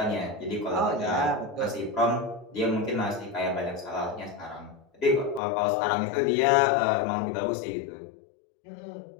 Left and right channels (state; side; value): drops out; right; at 5.4 s